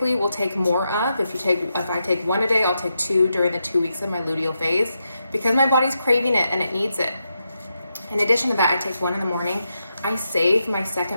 will take more of. If I take 1 a day, I'll take 2 during the 2 weeks of my luteal phase because my body's craving it and it needs it. In addition to that, I take 1 in the morning. I save my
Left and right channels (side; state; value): both; inverted; correlation -0.85